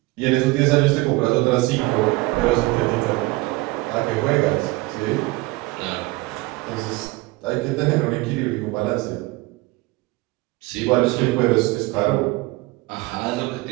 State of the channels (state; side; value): quieter; left; 22.1 dB